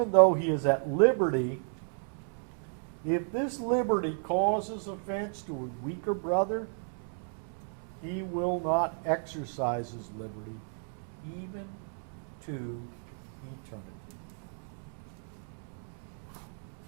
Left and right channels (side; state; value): left; silent; 56 dB below the other